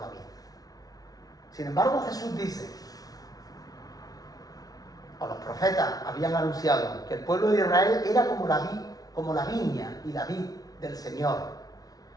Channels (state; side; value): late; right; 0.18 ms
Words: vid. Sin embargo, Jesús dice, o los profetas habían anunciado, que el pueblo de Israel era como la viña y la vid del Señor.